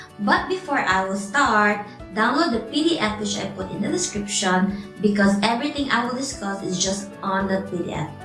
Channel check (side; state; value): both; identical; correlation 1.00